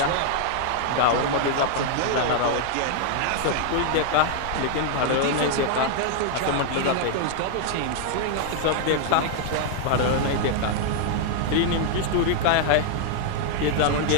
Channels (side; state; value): both; different; correlation 0.00